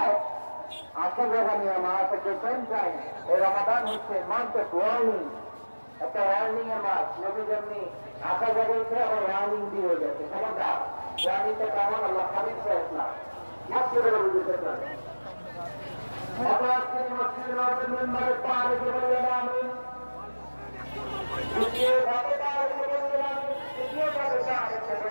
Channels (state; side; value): inverted; both; correlation -1.00